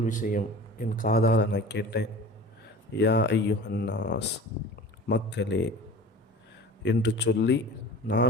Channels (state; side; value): normal; both; correlation 0.39